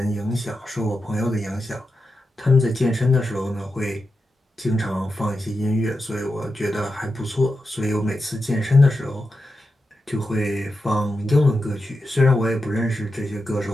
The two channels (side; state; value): both; normal; correlation 0.89